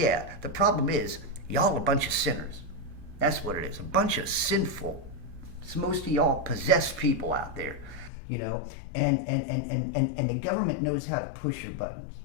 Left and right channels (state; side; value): drops out; right; at 8.1 s